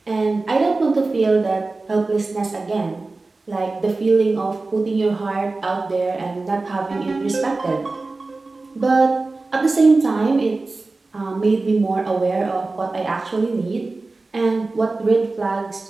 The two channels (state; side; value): quieter; left; 3.5 dB